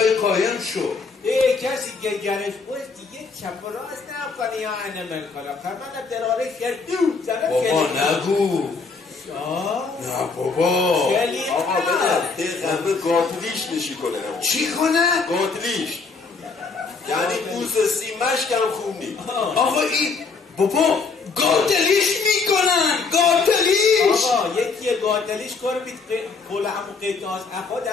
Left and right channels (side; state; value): right; quieter; 4.6 dB